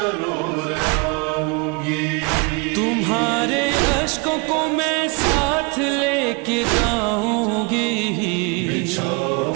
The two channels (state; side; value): quieter; left; 30.2 dB